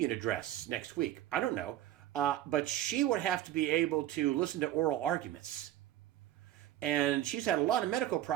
address next week. I don't know. But she would have to be able to listen to oral arguments. And she's had a lot of medical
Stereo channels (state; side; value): quieter; left; 13.0 dB